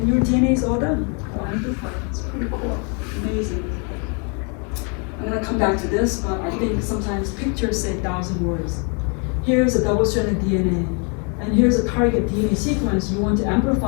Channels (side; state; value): right; quieter; 36.8 dB